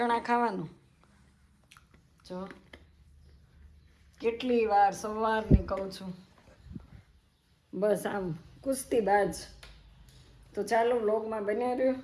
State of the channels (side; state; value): both; identical; correlation 1.00